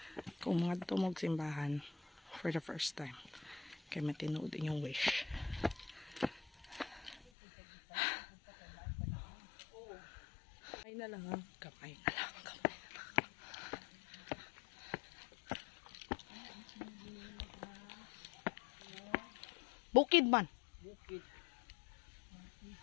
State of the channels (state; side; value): drops out; right; at 7.2 s